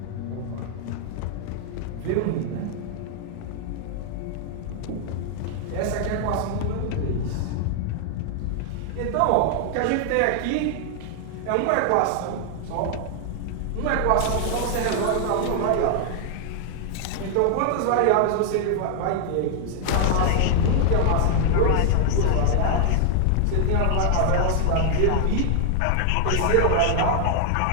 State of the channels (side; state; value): both; different; correlation 0.00